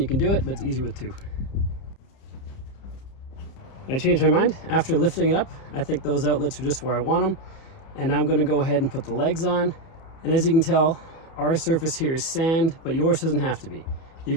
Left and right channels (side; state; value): right; late; 30 ms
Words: can do it, but it's easier with two. I changed my mind after lifting it up. I think those outlets are just where I want them. And now I'm going to go ahead and put the legs on. And as you can tell, our surface here is sand, but yours doesn't have to be. You